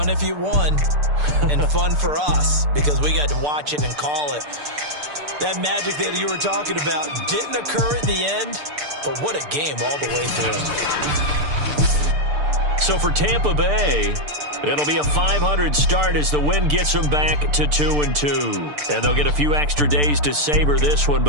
if you won, and fun for us, because we got to watch it and call it. That magic that you were talking about didn't occur at the end, but what a game all the way through. So for Tampa Bay, it'll be a 500 start as the win gets them back to 2-2. And they'll get a few extra days to savor this one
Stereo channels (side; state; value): left; late; 6.8 ms